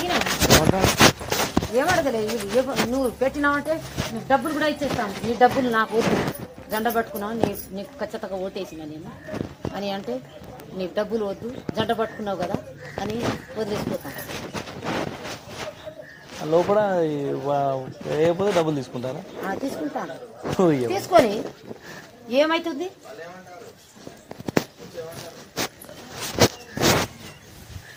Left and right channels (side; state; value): both; identical; correlation 1.00